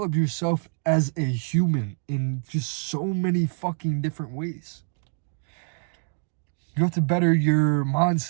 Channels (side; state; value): left; silent; 61 dB below the other